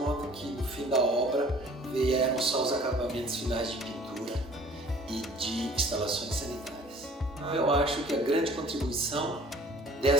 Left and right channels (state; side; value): normal; both; correlation 0.51